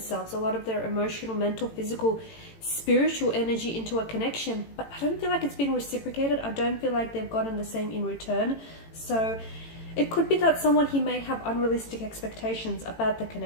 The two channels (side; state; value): right; late; 18 ms